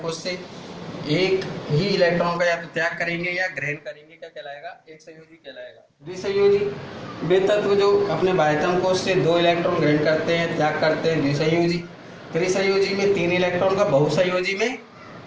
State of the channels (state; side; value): identical; both; correlation 1.00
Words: कोश से एक ही इलेक्ट्रॉन का या तो त्याग करेंगे या ग्रहण करेंगे, क्या कहलाएगा? एक संयोजी कहलाएगा। द्विसंयोजी, वे तत्व जो अपने बाह्यतम कोश से 2 इलेक्ट्रॉन ग्रहण करते हैं, त्याग करते हैं, द्विसंयोजी। त्रिसंयोजी में 3 इलेक्ट्रॉन का, बहुसंयोजी में